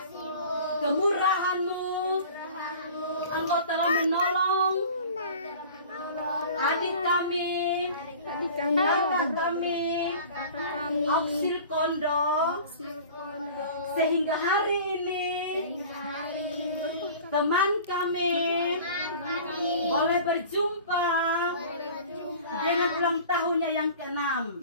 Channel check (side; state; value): both; inverted; correlation -0.42